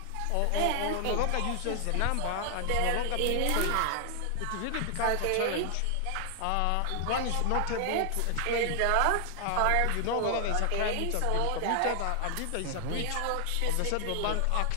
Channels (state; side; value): different; both; correlation 0.00